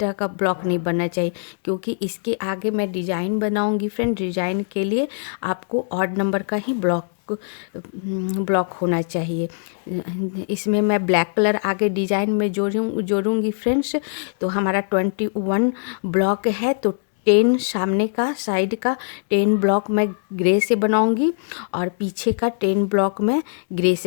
का ब्लॉक नहीं बनना चाहिए, क्योंकि इसके आगे मैं डिज़ाइन बनाऊंगी फ्रेंड। डिज़ाइन के लिए आपको ऑड नंबर का ही ब्लॉक होना चाहिए। इसमें मैं ब्लैक कलर आगे डिज़ाइन में जोड़ूंगी फ्रेंड्स। तो हमारा 21 ब्लॉक है, तो 10 सामने का साइड का 10 ब्लॉक मैं ग्रे से बनाऊंगी, और पीछे का 10 ब्लॉक मैं ग्रे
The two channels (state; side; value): silent; right; digital silence